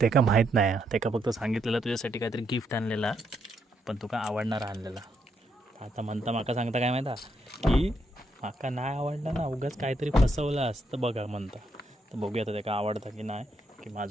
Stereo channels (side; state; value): both; normal; correlation 0.77